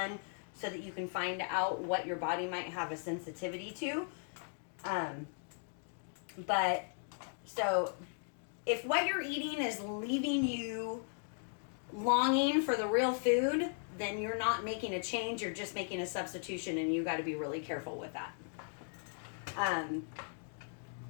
so that you can find out what your body might have a sensitivity to. But so if what you're eating is leaving you longing for the real food, then you're not making a change, you're just making a substitution, and you got to be really careful with that.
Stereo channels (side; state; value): right; silent; 53 dB below the other